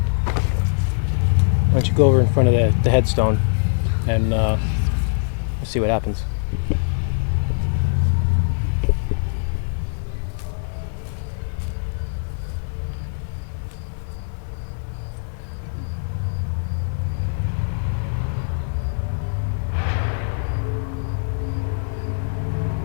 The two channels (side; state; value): right; silent; digital silence